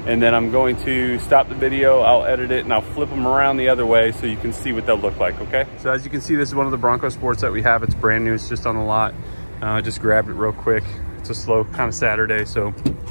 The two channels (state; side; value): inverted; both; correlation -1.00